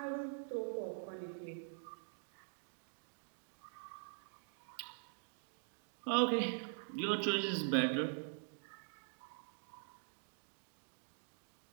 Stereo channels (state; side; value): silent; left; digital silence